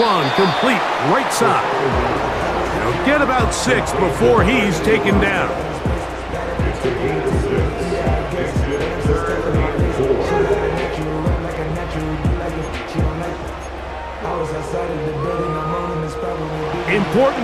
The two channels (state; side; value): identical; both; correlation 1.00